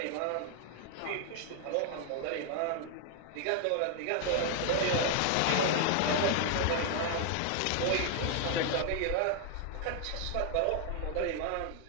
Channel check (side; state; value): both; different; correlation 0.00